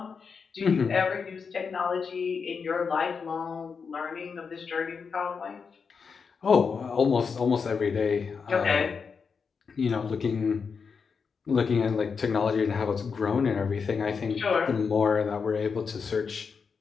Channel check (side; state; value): right; quieter; 5.7 dB